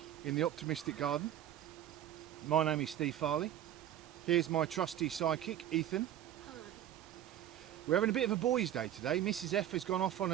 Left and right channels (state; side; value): quieter; left; 11.4 dB